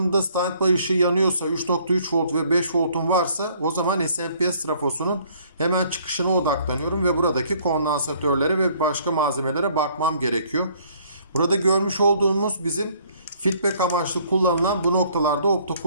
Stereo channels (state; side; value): inverted; both; correlation -0.61